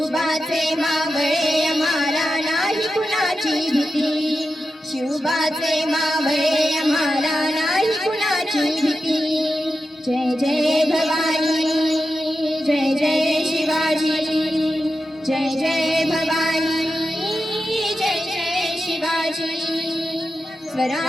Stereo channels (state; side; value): normal; both; correlation 0.90